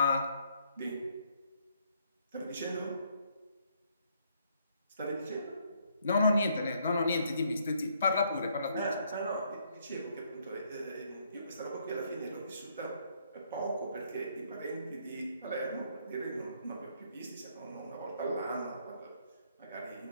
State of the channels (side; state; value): both; inverted; correlation -0.69